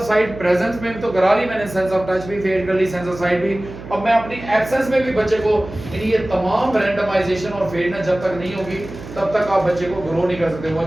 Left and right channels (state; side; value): noise; right; hum, 13 dB below the sound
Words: साइट प्रेजेंस में तो करा ली मैंने, सेंस ऑफ टच भी फेड कर ली, सेंस ऑफ साइट भी। अब मैं अपनी एब्सेंस में भी बच्चे को, यानी ये तमाम रैंडमाइजेशन और फेडनेस जब तक नहीं होगी तब तक आप बच्चे को ग्रो नहीं कर सकते। वो